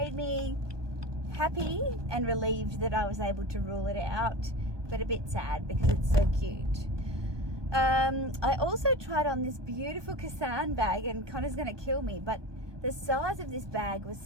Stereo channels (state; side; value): late; left; 1.2 ms